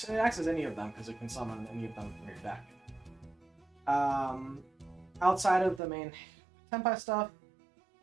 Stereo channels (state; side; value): drops out; left; at 5.8 s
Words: as any of them, because it can summon any of them from your deck. Outside of the main Tenpai stuff,